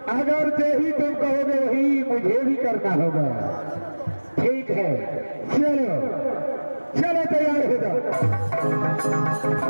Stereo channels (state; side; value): inverted; both; correlation -1.00